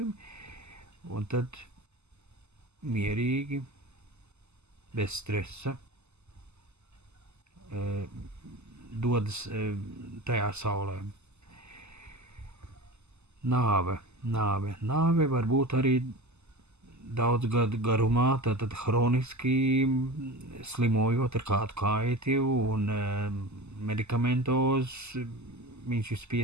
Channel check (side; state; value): left; late; 0.81 ms